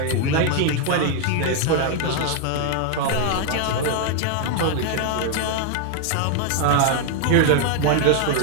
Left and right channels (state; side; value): different; both; correlation 0.00